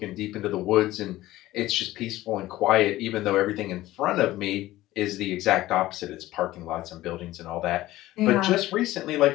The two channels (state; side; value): quieter; right; 16.3 dB